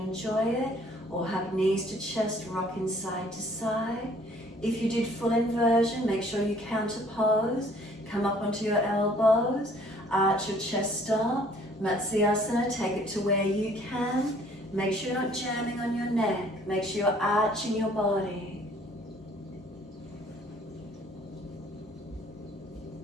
enjoy it, or hug knees to chest, rocking side to side. If you did full inversion, make sure you counter pose. Come up onto your elbows, arch your chest up. Matsyasana, take it to where you can. Make sure you're not jamming on your neck. Make sure you're arching your body.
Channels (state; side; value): normal; both; correlation 0.58